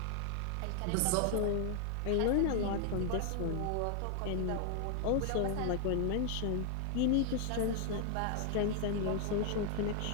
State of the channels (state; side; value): different; both; correlation 0.00